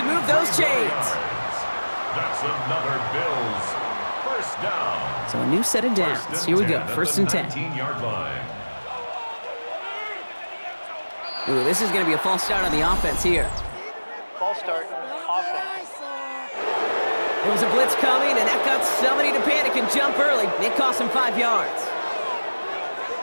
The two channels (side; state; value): both; inverted; correlation -1.00